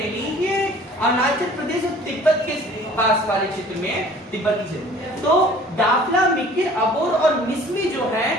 ये अरुणाचल प्रदेश और तिब्बत के पास वाले क्षेत्र में, तिब्बती क्षेत्र। तो डाफला, मिकिर, अबोर और मिसमी जो है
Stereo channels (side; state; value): both; normal; correlation 0.50